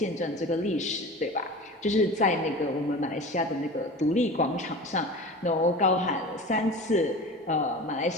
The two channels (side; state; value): both; normal; correlation 0.34